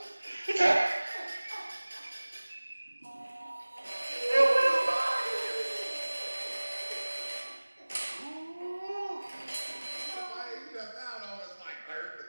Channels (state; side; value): inverted; both; correlation -1.00